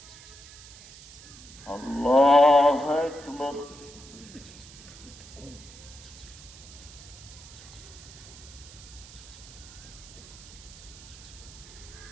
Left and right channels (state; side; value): noise; right; hiss, 18 dB below the sound